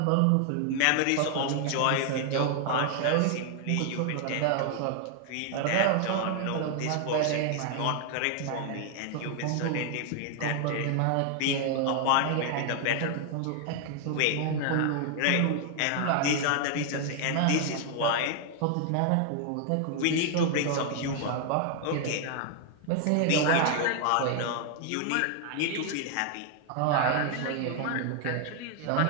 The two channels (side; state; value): both; different; correlation 0.00